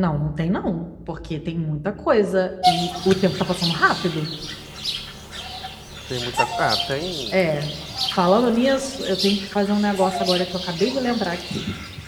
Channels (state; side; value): identical; both; correlation 1.00